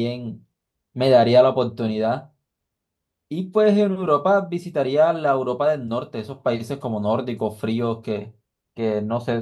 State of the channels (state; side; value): identical; both; correlation 1.00